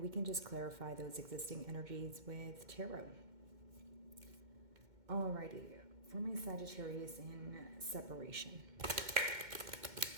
we can just clarify those existing energies with tarot. Alrighty, for my Sagittarius in separation.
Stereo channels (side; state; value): left; late; 2.1 ms